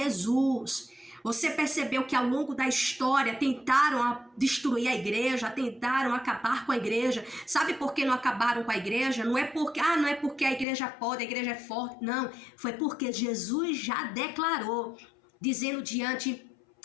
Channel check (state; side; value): drops out; right; at 10.7 s